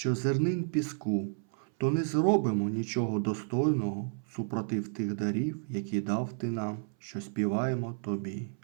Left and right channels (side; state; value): left; silent; 57 dB below the other